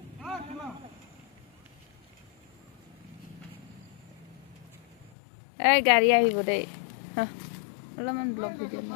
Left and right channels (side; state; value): right; drops out; at 5.1 s